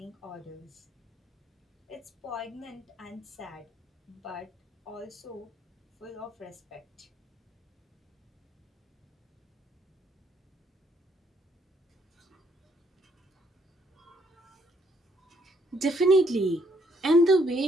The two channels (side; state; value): both; normal; correlation 0.69